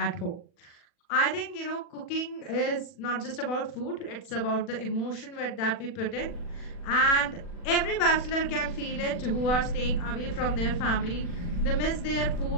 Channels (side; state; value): right; late; 40 ms